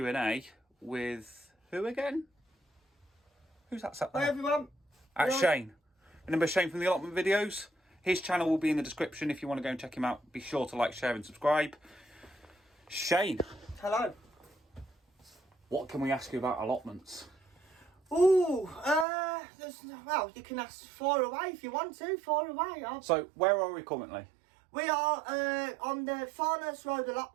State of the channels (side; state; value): left; drops out; at 19.1 s